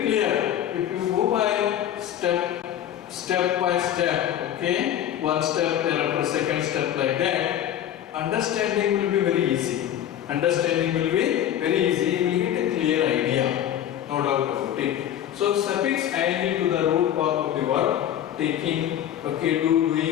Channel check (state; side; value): quieter; right; 10.9 dB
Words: clear. If you go by step by step, okay, one step thereafter second step like that, understanding will be very easy. Understanding will be very easy. You will get a clear idea, no doubt about it. So suffix ing to the root form of the verb, taking, okay,